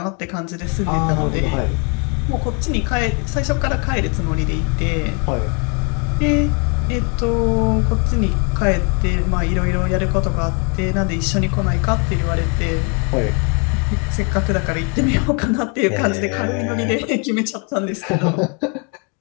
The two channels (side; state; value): right; quieter; 35.8 dB